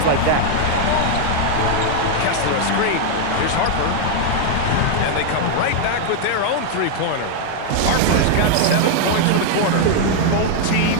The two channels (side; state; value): both; different; correlation 0.00